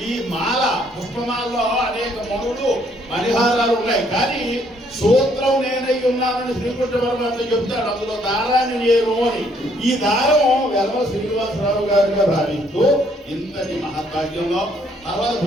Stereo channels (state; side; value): normal; both; correlation 0.67